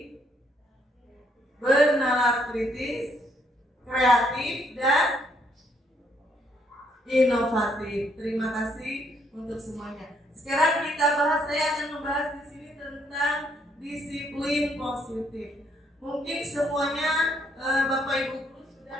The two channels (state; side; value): normal; both; correlation 0.71